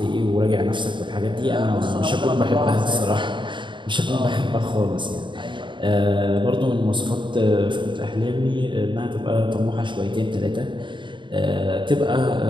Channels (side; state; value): left; late; 0.23 ms